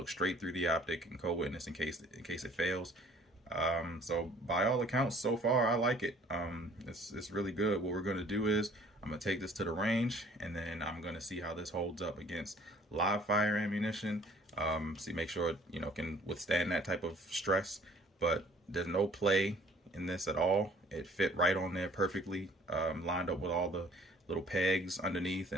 straight through the optic and co-witness in case it fails. So by all accounts, so far I like it. It's really good. What we're going to do is I'm going to take this to the range, and then I'm going to see how this holds up against live fire ammunition. Make sure it can withstand that type of stress. But there's no play in this at all. It fit right on there perfectly, lined up with all the little pegs underneath,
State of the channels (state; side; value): normal; both; correlation 0.54